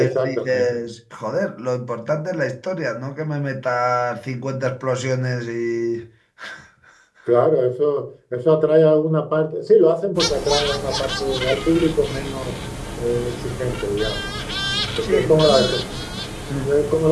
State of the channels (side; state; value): both; identical; correlation 1.00